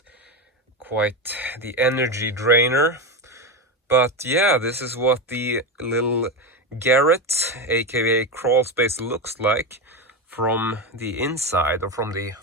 quite the energy drainer. But yeah, this is what the little Garret, aka crawl space, looks like from the inside or from the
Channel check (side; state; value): both; normal; correlation 0.16